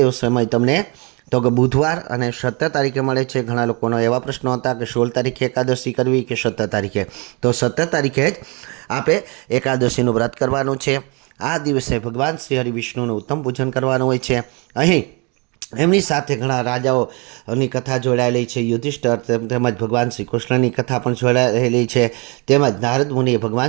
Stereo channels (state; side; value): quieter; left; 30.5 dB